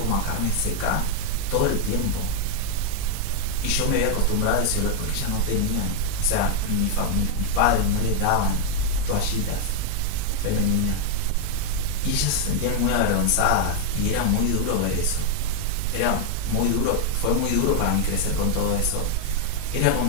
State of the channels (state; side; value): different; both; correlation 0.00